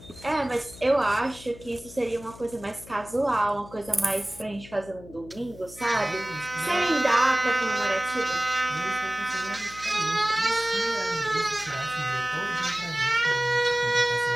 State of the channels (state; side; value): noise; left; hum, 18 dB below the sound